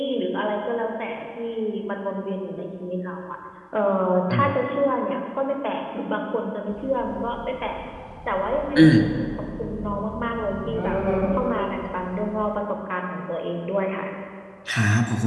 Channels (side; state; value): both; identical; correlation 1.00